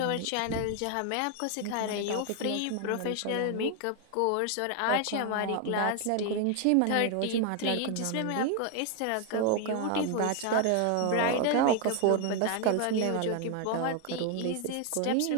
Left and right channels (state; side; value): different; both; correlation 0.01